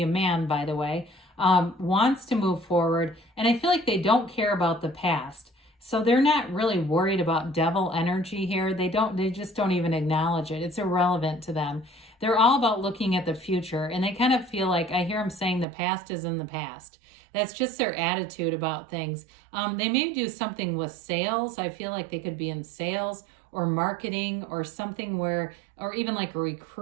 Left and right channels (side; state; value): left; drops out; at 15.7 s